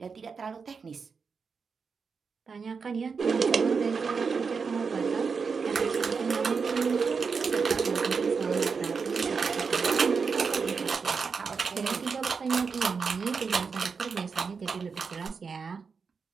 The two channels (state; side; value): quieter; left; 5.3 dB